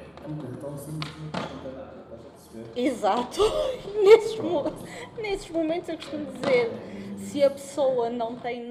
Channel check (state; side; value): identical; both; correlation 1.00